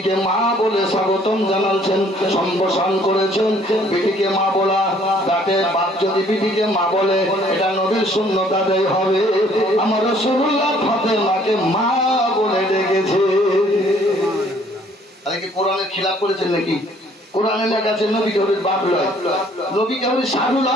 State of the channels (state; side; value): normal; both; correlation 0.60